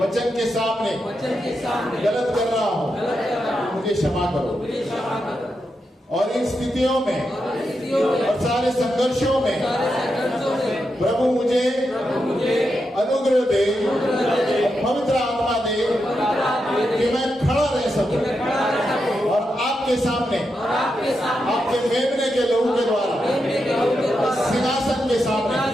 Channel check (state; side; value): normal; both; correlation 0.86